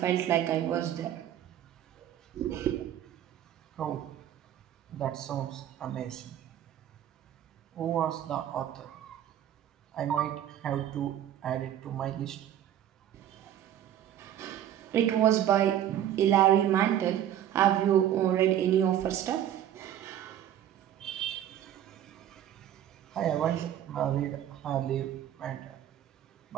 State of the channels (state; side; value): quieter; left; 11.0 dB